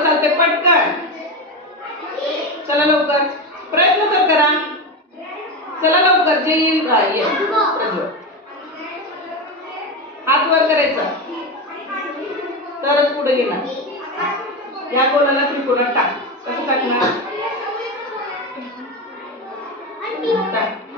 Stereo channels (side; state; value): both; normal; correlation 0.18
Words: चालते? पटकन चला लवकर प्रयत्न तर करा. चला लवकर जे येईल हात वर करायचा तरच पुढे येणार. या गोलाला त्रिकोणात टाक. कसं टाकणार?